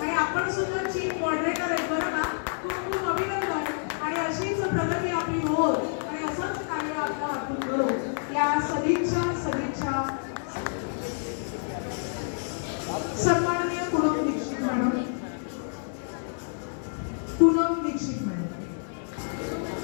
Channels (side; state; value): right; silent; digital silence